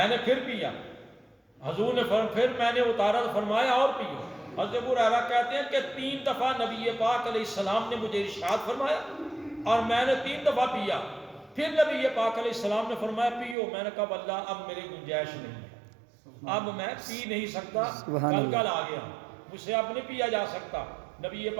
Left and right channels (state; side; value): drops out; left; at 13.6 s